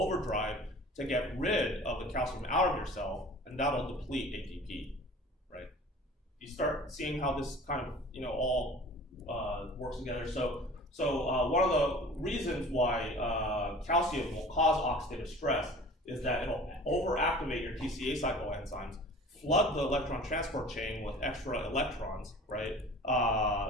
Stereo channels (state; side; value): normal; both; correlation 0.43